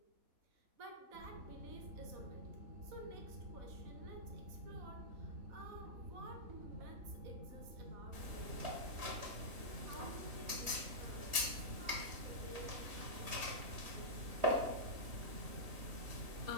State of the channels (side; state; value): left; late; 3.2 ms